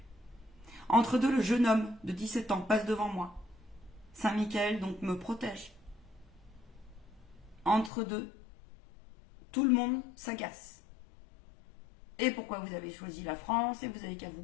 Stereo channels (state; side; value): drops out; right; at 7.9 s